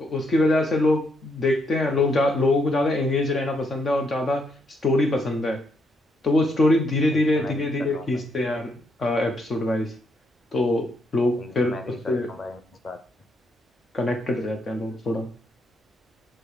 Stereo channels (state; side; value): normal; both; correlation 0.76